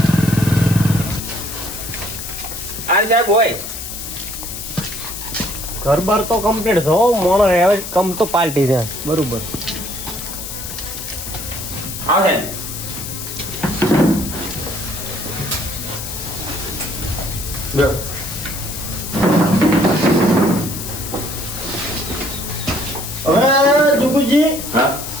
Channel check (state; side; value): noise; left; hiss, 8 dB below the sound